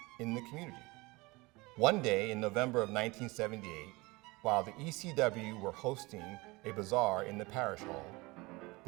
in the community. One day in November of 1978, while the ECW were hosting a bazaar in the parish hall,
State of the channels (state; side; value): quieter; left; 23.7 dB